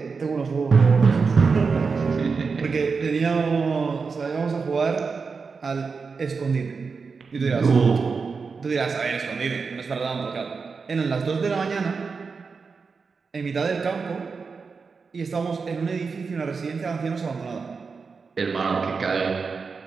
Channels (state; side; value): quieter; left; 5.0 dB